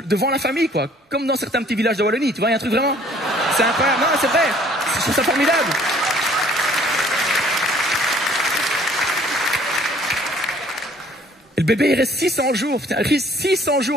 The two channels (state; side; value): normal; both; correlation 0.57